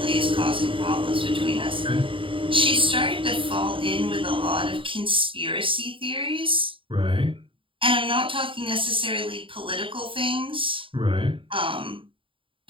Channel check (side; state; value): left; late; 0.25 ms